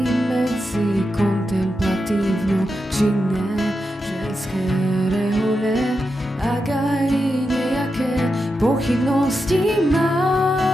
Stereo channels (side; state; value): both; normal; correlation 0.88